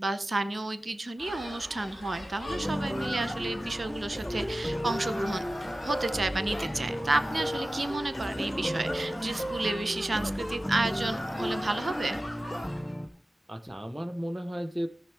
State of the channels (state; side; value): normal; both; correlation 0.96